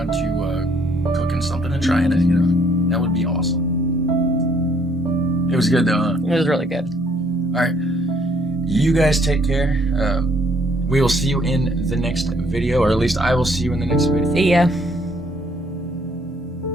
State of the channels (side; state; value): both; normal; correlation 0.65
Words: to cooking something and trying it, you know. That would be awesome. It was good though, huh? it was really good. All right. You guys take care. We will see you in the next video, or at least I will see you in the next video. See ya.